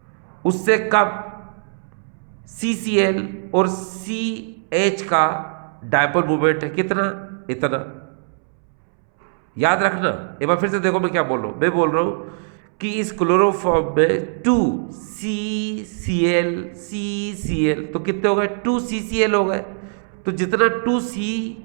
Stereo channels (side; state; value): left; silent; 65 dB below the other